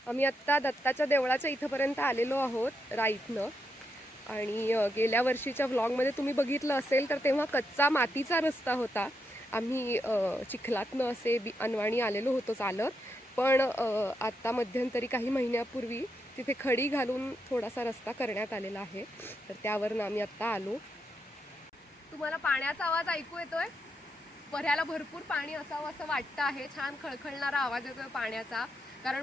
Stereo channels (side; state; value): both; normal; correlation 0.82